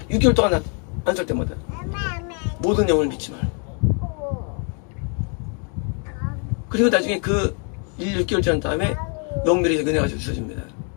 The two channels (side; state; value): right; quieter; 39.7 dB